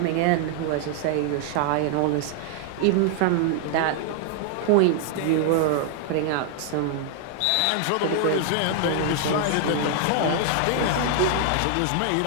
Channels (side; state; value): both; different; correlation 0.00